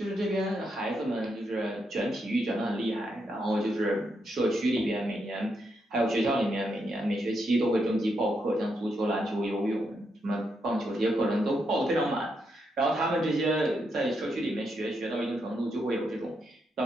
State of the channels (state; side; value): normal; both; correlation 0.81